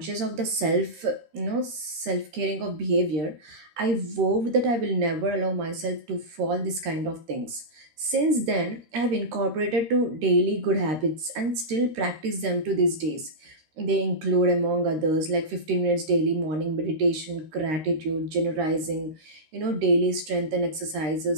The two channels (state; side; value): late; left; 13 ms